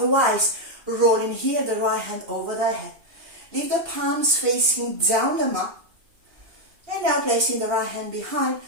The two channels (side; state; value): left; late; 2.7 ms